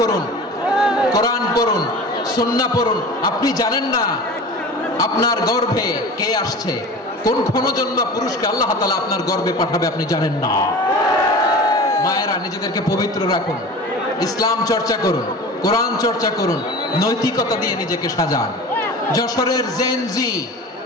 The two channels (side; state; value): both; normal; correlation 0.36